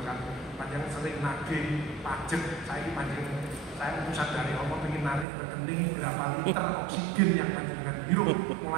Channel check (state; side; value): drops out; left; at 5.2 s